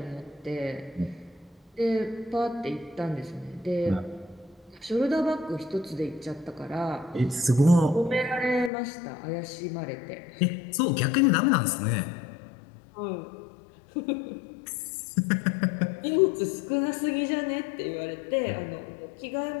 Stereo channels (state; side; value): drops out; right; at 8.7 s